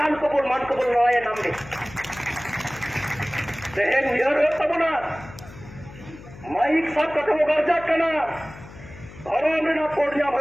কবুল মান কবুল নয় নামবে দেখেন নিহর হতাম না মাইক সব কথা গার্জা কেনা ধর্ম আমরা কোর্ট জাম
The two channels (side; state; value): left; noise; hum, 17 dB below the sound